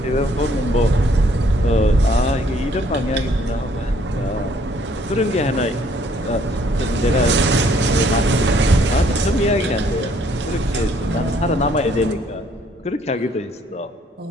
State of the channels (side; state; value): both; normal; correlation 0.64